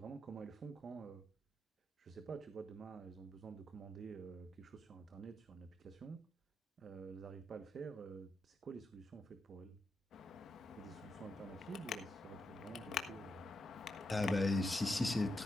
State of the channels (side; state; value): both; normal; correlation 0.84